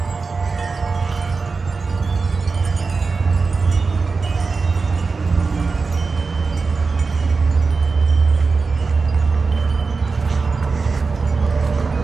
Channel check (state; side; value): quieter; left; 4.4 dB